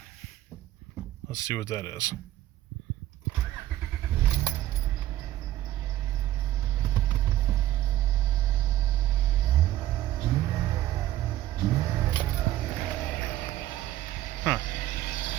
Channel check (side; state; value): left; quieter; 14.0 dB